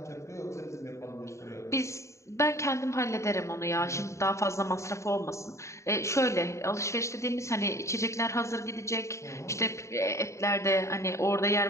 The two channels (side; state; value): right; late; 0.14 ms